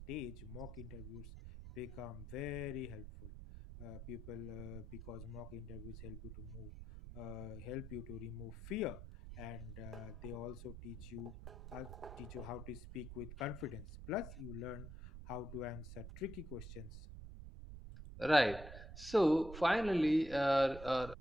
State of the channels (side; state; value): right; noise; rumble, 11 dB below the sound